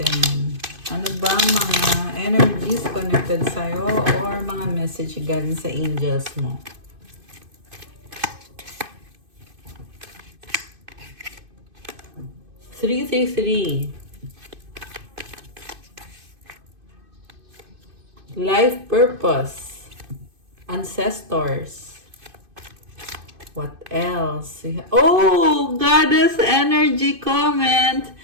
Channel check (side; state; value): left; late; 2.5 ms